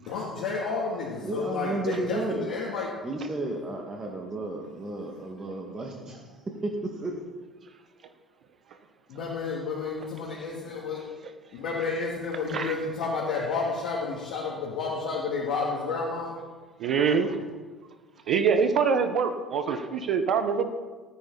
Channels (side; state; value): both; normal; correlation 0.40